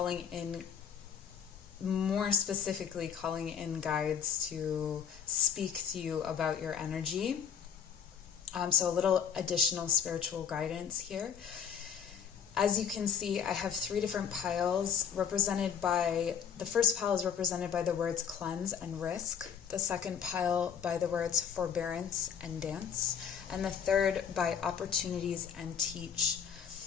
in, more specifically calling in guides to speak to you about your energy. So a little additional spiritual guidance here. As you can see, I have three different piles the first pile is represented by the words cleanse and risk, the second pile by the words forbearance and dance, and the third by opportunities and teach.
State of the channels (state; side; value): quieter; right; 8.0 dB